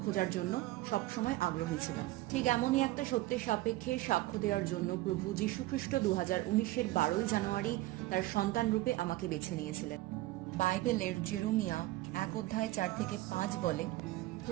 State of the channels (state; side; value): quieter; left; 17.8 dB